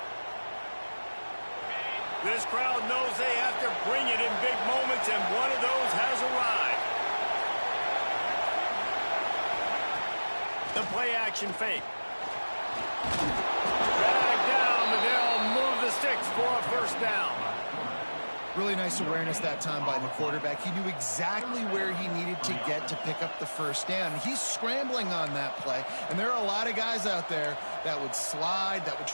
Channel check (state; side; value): inverted; both; correlation -1.00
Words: This crowd knows they have to bring it in big moments, and one of those has arrived. The play-action fake. Dragged down, but they'll move the sticks for a first down. Really nice awareness that time by the quarterback. He knew exactly where he needed to get to pick up the first down. He's scrambling on that play, and there are a lot of guys out there that would slide, that would